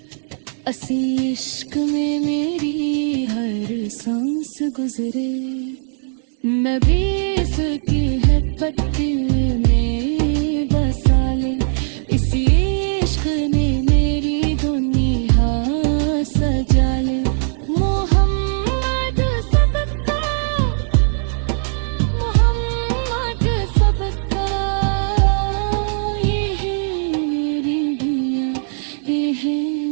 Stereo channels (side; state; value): left; silent; 66 dB below the other